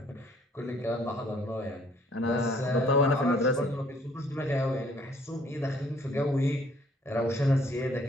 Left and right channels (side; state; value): both; normal; correlation 0.61